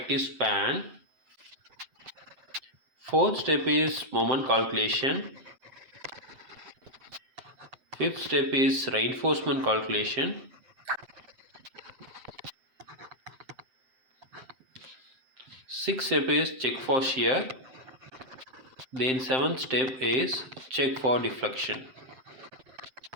span. Fourth step is moment calculation. Fifth step is reinforcement calculation. Sixth step is check for shear. Then seventh step is check for deflection.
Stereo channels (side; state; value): left; late; 7.7 ms